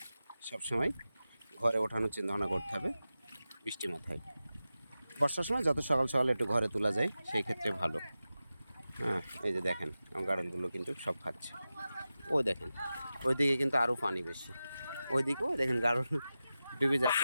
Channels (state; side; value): inverted; both; correlation -0.93